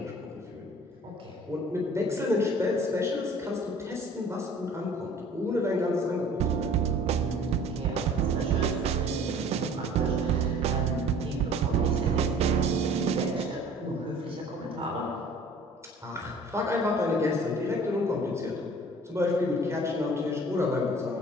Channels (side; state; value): both; normal; correlation 0.49